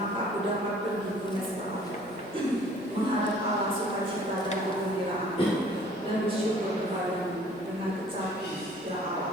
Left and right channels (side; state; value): both; normal; correlation 0.54